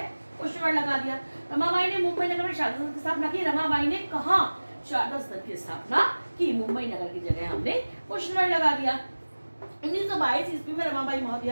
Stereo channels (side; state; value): both; inverted; correlation -1.00